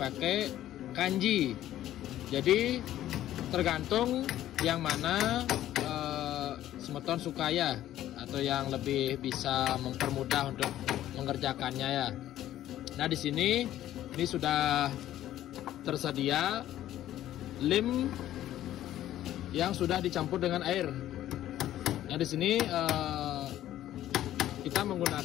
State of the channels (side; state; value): right; quieter; 13.0 dB